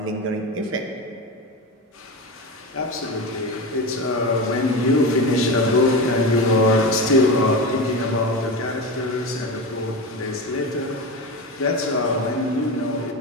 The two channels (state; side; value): normal; both; correlation 0.22